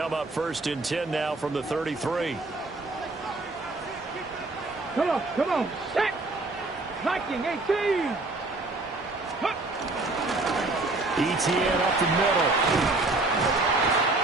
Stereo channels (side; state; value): left; quieter; 3.1 dB